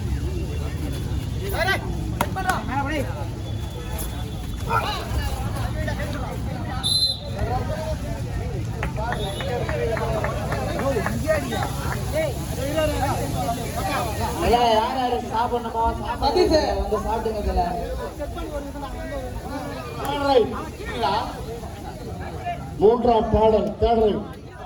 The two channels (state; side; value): identical; both; correlation 1.00